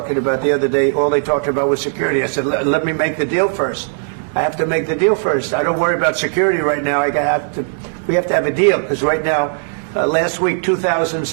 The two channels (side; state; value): left; silent; digital silence